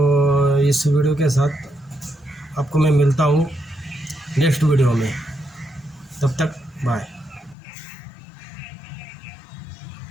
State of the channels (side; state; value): right; drops out; at 7.6 s